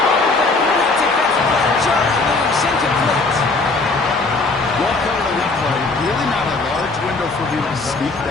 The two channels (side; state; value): right; quieter; 3.6 dB